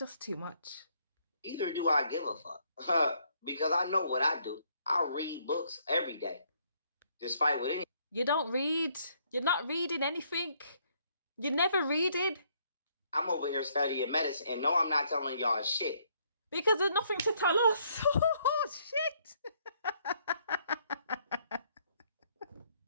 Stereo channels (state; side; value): inverted; both; correlation -0.69